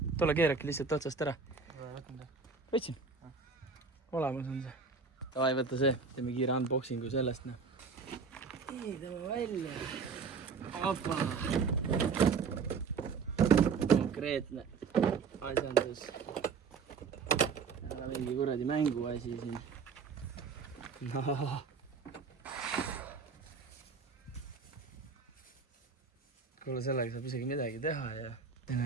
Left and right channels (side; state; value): left; quieter; 5.3 dB